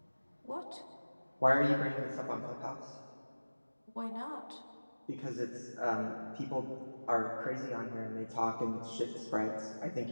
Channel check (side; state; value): both; inverted; correlation -1.00